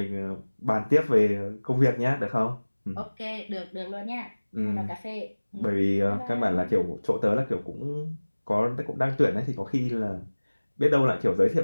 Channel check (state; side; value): inverted; both; correlation -1.00